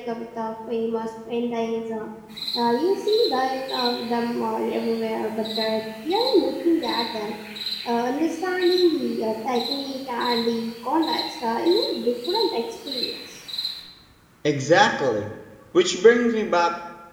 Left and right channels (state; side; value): identical; both; correlation 1.00